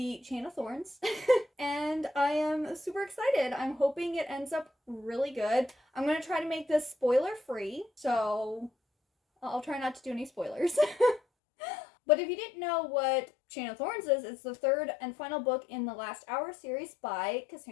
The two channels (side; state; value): right; drops out; at 11.2 s